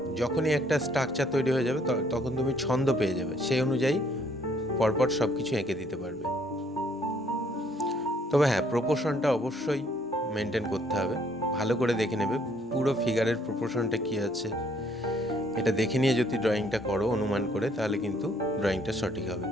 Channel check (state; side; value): normal; both; correlation 0.65